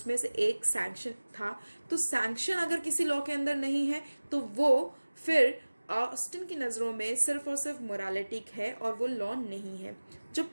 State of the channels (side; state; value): both; inverted; correlation -1.00